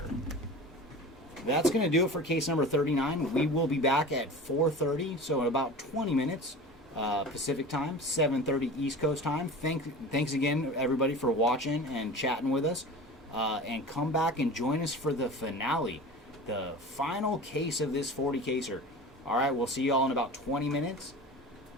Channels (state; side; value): normal; both; correlation 0.35